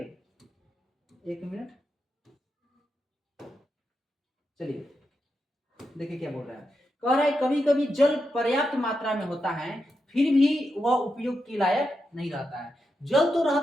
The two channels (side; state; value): both; normal; correlation 0.86